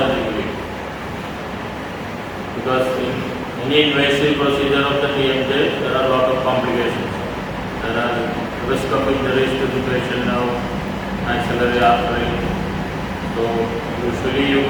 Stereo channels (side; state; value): both; identical; correlation 1.00